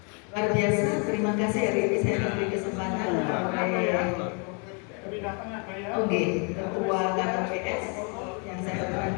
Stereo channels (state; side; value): quieter; right; 37.0 dB